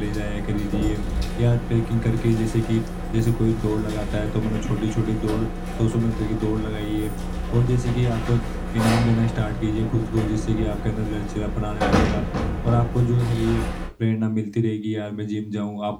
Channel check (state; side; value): identical; both; correlation 1.00